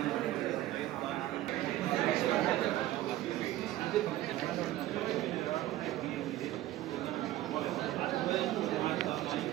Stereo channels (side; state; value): left; quieter; 14.9 dB